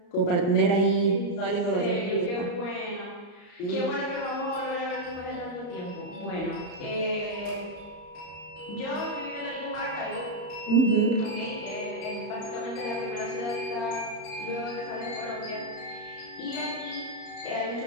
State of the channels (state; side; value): late; right; 34 ms